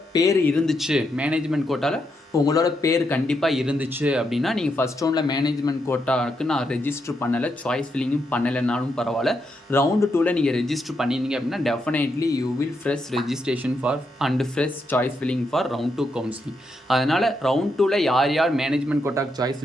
பேர் இருந்துச்சு, மேனேஜ்மெண்ட் கோட்டாவில் உங்களோட பேர் கண்டிப்பாக இருந்துச்சு அப்படின்னா நீங்கள் ஃபஸ்ட் ரவுண்டில் மேனேஜ்மெண்ட் கோட்டாவுக்கு நான் ரெஜிஸ்டர் பண்ணலை, சாய்ஸ் ஃபில்லிங்கும் பண்ணலைனாலும் பரவாயில்ல, ரவுண்டு 2ல் நீங்கள் ரெஜிஸ்டர் பண்ணியிருந்தீங்க அப்படின்னா definitely you will fresh registration for and fresh choice filling for round 2 counselling. அதனால் ரவுண்ட் 2ல் யார் மேனேஜ்மெண்ட் கோட்டாக்கு சாய்ஸ்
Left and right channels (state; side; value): normal; both; correlation 0.81